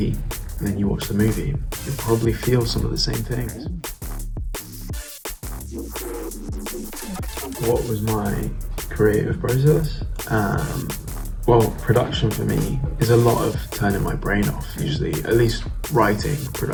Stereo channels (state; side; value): identical; both; correlation 1.00